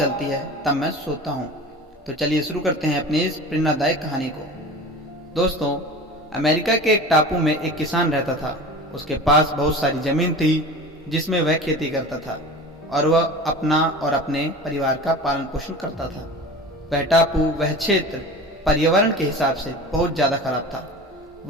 है तब मैं सोता हूँ। तो चलिए शुरू करते हैं अपनी इस प्रेरणादायक कहानी को। दोस्तों, अमेरिका के एक टापू में एक किसान रहता था। उसके पास बहुत सारी जमीन थी जिसमें वह खेती करता था और वह अपना और अपने परिवार का पालन पोषण करता था। वह टापू, वह क्षेत्र पर्यावरण के हिसाब से बहुत ज़्यादा खराब था।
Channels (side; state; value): both; normal; correlation 0.36